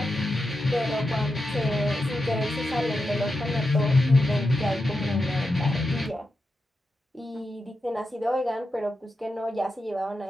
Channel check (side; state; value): both; normal; correlation 0.88